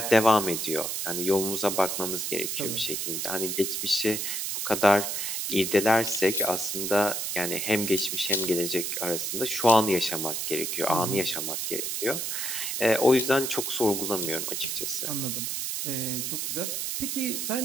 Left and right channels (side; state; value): right; noise; hiss, 2 dB below the sound